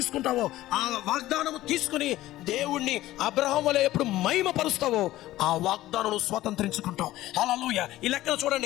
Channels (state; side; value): quieter; right; 15.7 dB